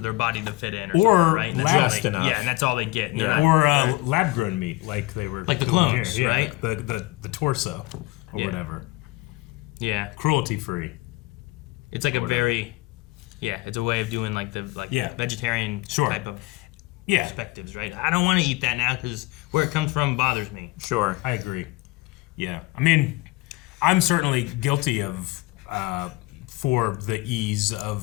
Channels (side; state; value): right; quieter; 21.4 dB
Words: their body to fit in, Or something, right? And that's all just they- enough. Yeah, and that's all they get. and Yeah. they're Or lab grown meat, like they were Like the doing clones, here. Yeah, right? like the torso or Yeah. whatever. yeah, Cruelty free. it's like a whatever. very, it's a way of doing like the Yeah. vegetarian Sure. type of Yeah, perspectives, right? I don't want to eat that now because where it comes from bothers me. Sure. I agree. Yeah, I mean, I'm certainly guilty of for the ease